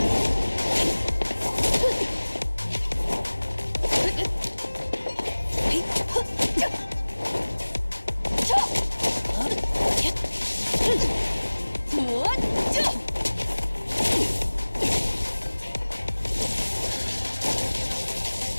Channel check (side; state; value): both; inverted; correlation -1.00